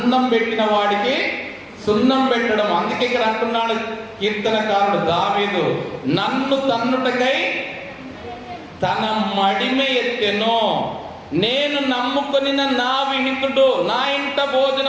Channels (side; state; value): both; identical; correlation 1.00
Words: పెట్టిన వాడికి సున్నం పెట్టడం. అందుకే ఇక్కడ అంటున్నాడు కీర్తనకారుడు దావీదు, నన్ను తన్నుటకై తన మడిమె ఎత్తెను. నేను నమ్ముకొని నా విహితుడు, నా ఇంట